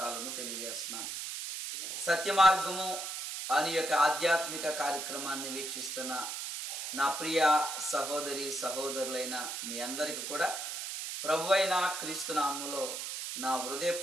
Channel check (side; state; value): right; noise; hiss, 5 dB below the sound